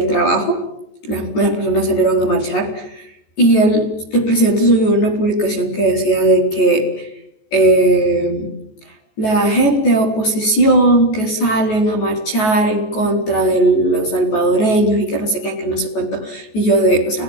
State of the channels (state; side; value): late; right; 14 ms